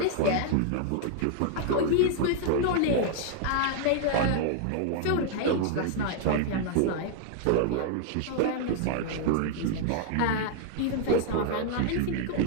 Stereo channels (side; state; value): both; different; correlation 0.00